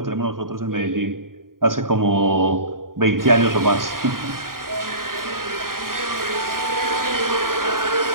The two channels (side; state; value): left; late; 0.91 ms